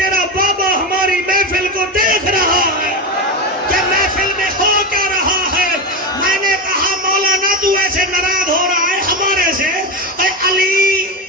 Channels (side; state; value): both; normal; correlation 0.16